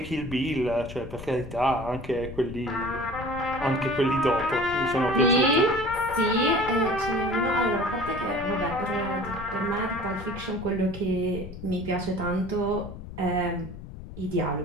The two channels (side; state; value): left; noise; rumble, 12 dB below the sound